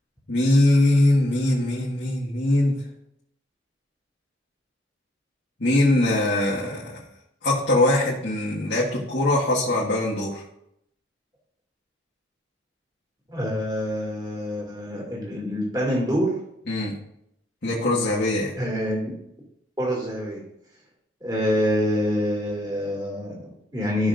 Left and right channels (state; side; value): normal; both; correlation 0.64